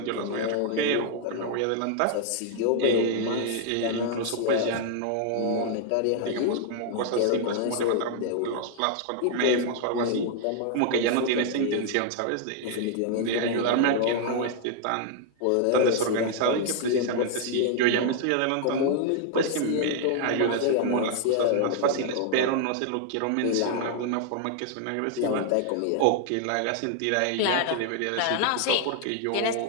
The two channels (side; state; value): both; different; correlation 0.00